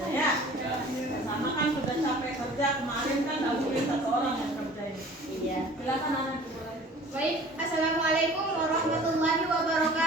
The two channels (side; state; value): both; normal; correlation 0.47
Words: ya. Kerjasama kan sudah capek kerja kemarin kan nggak mungkin satu orang yang kerjain. Iya. Silakan anak boleh. Baik, assalamualaikum warahmatullahi